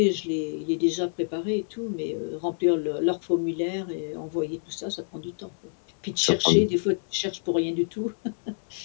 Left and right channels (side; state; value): right; silent; 56 dB below the other